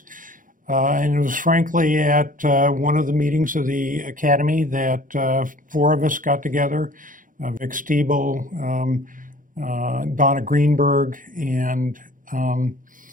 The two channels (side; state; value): left; late; 0.39 ms